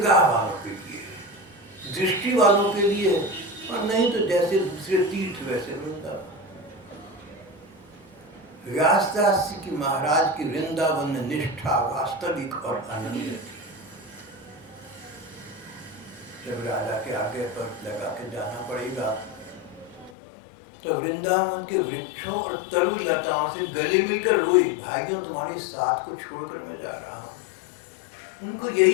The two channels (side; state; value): right; drops out; at 20.1 s